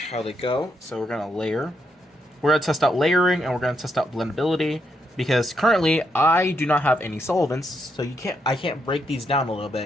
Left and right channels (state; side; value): normal; both; correlation 0.79